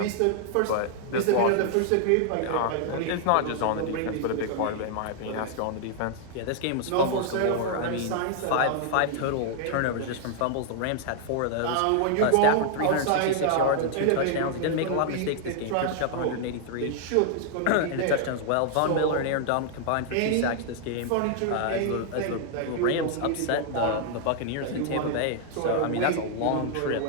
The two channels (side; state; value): both; different; correlation 0.00